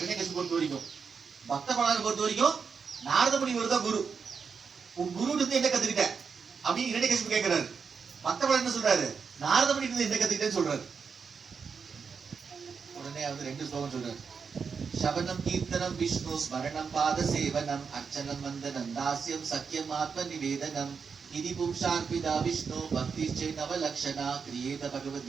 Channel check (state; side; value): quieter; left; 5.8 dB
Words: பொறுத்த வரைக்கும், பக்த பிரகலாதனை பொறுத்த வரைக்கும் நாரத முனிவர் தான் குரு. உன் குரு இருந்து என்ன கத்துக்கிட்ட அப்படின்னு இரண்யகசிபு கேட்கிறாரு. பக்த பிரகலாதன் என்ன சொல்றாரு? நாரத முனி இருந்து என்ன கத்துக்கிட்டேன்னு சொல்றாரு. உடனே வந்து 2 ஸ்லோகம் சொல்றாரு. சவனம் கீர்த்தனம் விஷ்ணு ஸ்மரணம் பாத சேவனம் அர்ச்சனம் வந்தனம் தாஸ்யம் சக்கியம் ஆத்ம நிவேதனம் இதி பும்சார்பிதா விஷ்ணு பக்தி சே நவலக்ஷணா கிரியேத